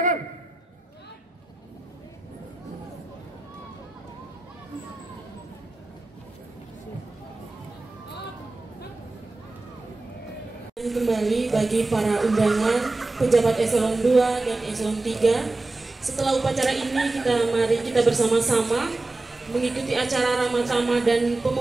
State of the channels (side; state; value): left; quieter; 3.1 dB